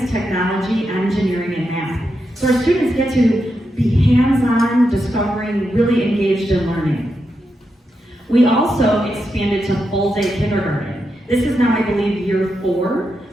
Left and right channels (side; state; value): both; normal; correlation 0.85